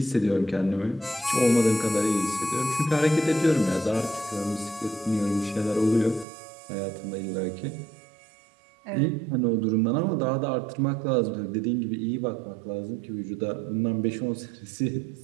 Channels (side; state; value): left; drops out; at 6.2 s